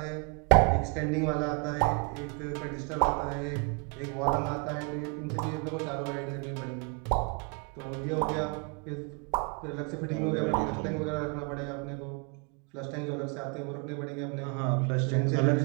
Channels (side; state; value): left; quieter; 35.6 dB